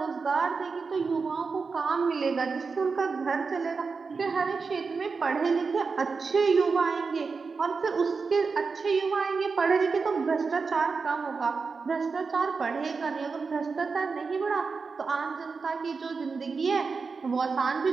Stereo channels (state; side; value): quieter; left; 4.8 dB